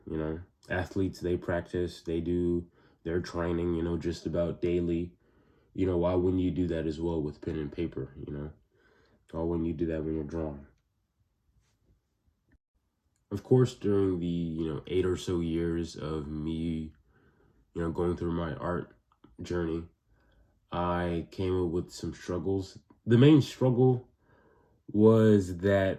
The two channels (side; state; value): both; identical; correlation 1.00